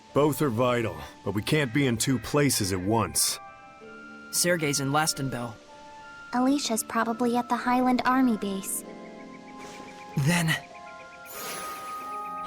Both are vital, but we can't be in two places at once. Sergei's in Lastenbell. Alisha's probably at the Highland Army base. Then...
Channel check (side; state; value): both; identical; correlation 1.00